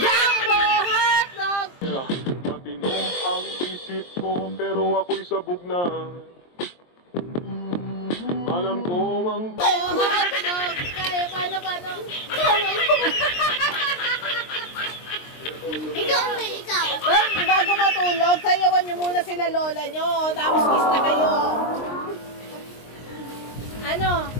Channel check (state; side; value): late; right; 23 ms